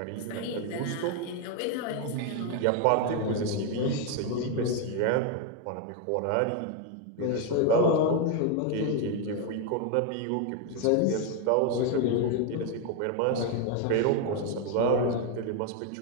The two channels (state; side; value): different; both; correlation 0.01